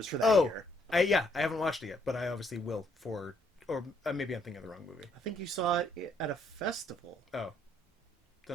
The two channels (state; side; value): normal; both; correlation 0.69